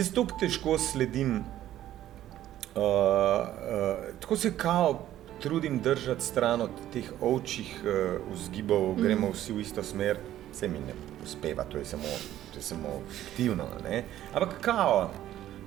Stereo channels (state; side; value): quieter; left; 12.8 dB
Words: toliko težko sledim, tako se kao trudim držati stran od teh ovčjih vzgibov, gremo vsi v isto smer, se mi ne uspeva, to je samo fiktivno, ne? Ampak kao,